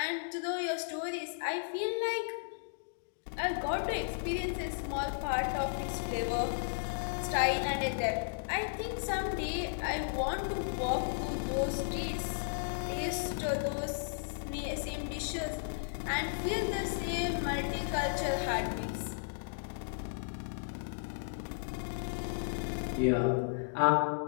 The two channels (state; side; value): silent; right; digital silence